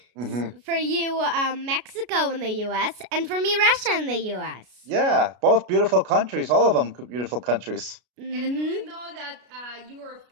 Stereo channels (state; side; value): late; left; 33 ms